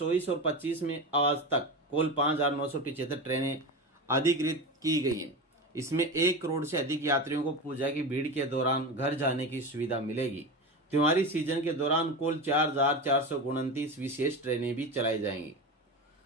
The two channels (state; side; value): normal; both; correlation 0.23